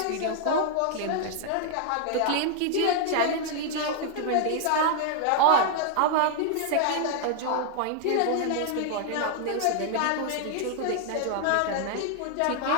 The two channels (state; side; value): different; both; correlation 0.00